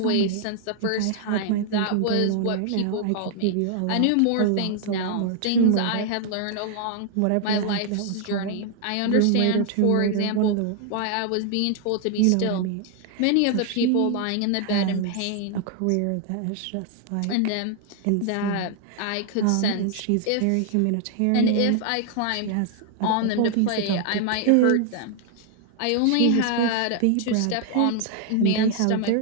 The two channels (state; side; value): different; both; correlation 0.00